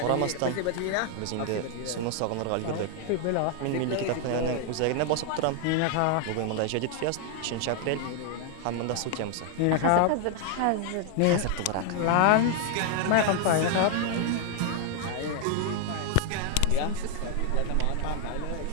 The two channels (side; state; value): both; different; correlation 0.00